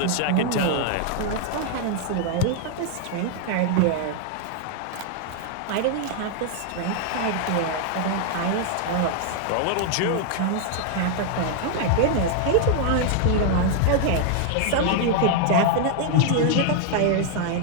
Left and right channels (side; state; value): both; different; correlation 0.00